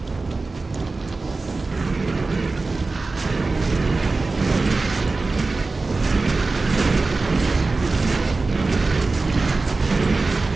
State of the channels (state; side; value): quieter; left; 3.7 dB